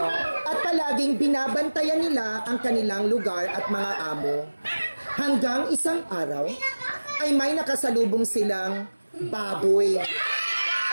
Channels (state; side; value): inverted; both; correlation -1.00